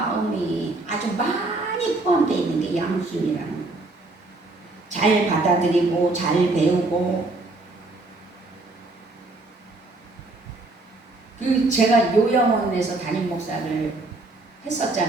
아주 많이 포함되어 있는 게 양순이라는 거예요. 잘 받아들이고 잘 배우고. 제가 요양원에서 담임 목사를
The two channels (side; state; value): left; quieter; 3.1 dB